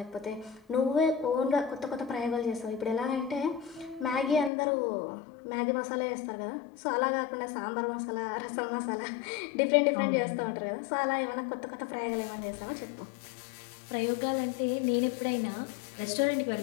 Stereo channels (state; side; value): drops out; right; at 4.5 s